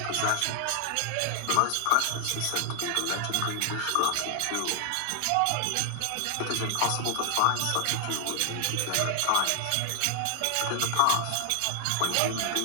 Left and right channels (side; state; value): both; different; correlation 0.00